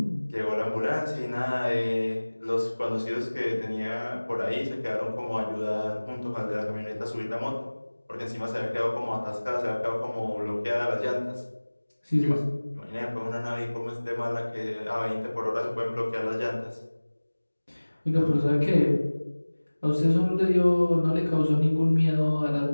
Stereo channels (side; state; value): both; inverted; correlation -1.00